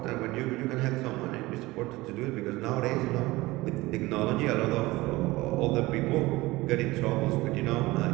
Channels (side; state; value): left; quieter; 20.1 dB